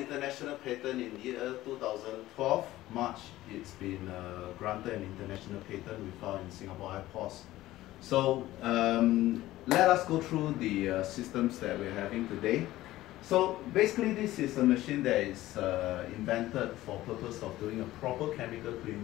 patent in the year 2012, March. It's been granted an international patent. We filed in Singapore airports. So let us go through the systems that we're having today. So basically this is a machine that is invented for purpose of doing a proper chemical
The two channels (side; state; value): right; quieter; 15.9 dB